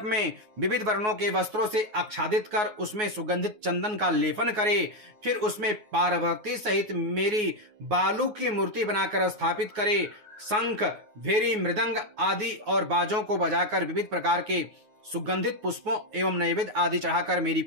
में विविध वर्णों के वस्त्रों से आच्छादित कर उसमें सुगंधित चंदन का लेपन करे। फिर उसमें पार्वती सहित मेरी बालू की मूर्ति बनाकर स्थापित करे। शंख, भेरी, मृदंग आदि और बाजों को बजाकर विविध प्रकार के सुगंधित पुष्पों एवं नैवेद्य आदि चढ़ाकर मेरी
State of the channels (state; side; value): late; left; 9.5 ms